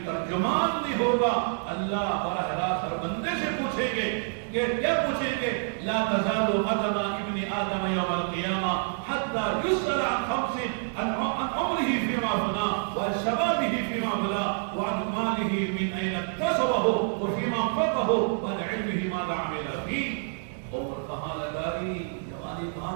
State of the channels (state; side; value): silent; left; 60 dB below the other